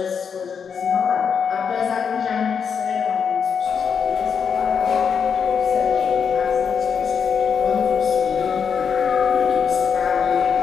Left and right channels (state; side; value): quieter; right; 6.7 dB